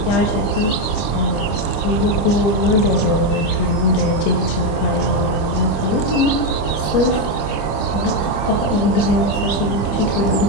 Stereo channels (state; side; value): late; right; 25 ms